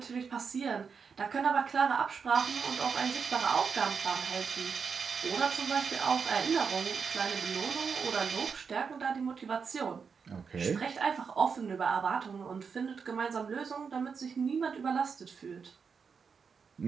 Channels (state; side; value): quieter; left; 5.8 dB